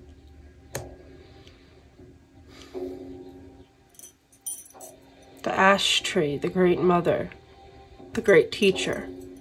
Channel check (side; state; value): both; identical; correlation 1.00